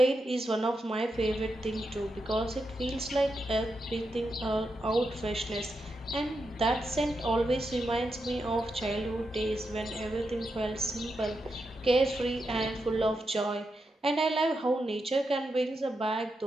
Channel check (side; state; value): both; normal; correlation 0.85